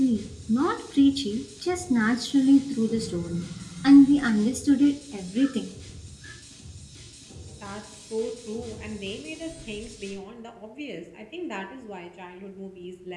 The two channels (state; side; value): identical; both; correlation 1.00